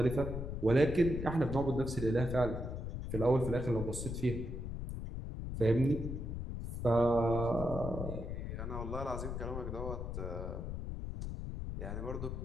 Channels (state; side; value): noise; left; rumble, 5 dB below the sound